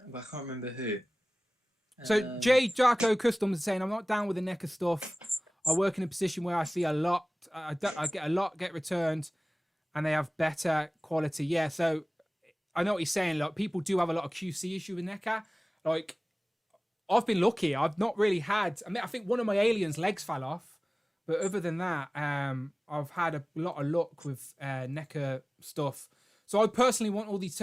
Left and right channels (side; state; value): both; normal; correlation 0.98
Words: But I can't remember who. So J Jarko Customs is saying, I'm not down with the NECA stuff. I work in a position where I see a lot. I get a lot get returned, and they have better quality. Yeah, so I know what he's saying. Like, people do have a lot of QC issue with NECA. Like, I've been lucky. I've not really had. I think one of my aliens' legs fell off, but other than that, I've had a lot of luck with NECA stuff. So I personally want all these